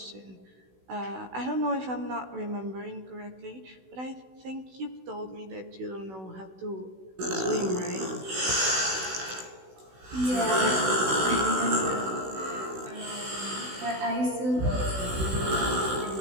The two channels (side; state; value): left; late; 16 ms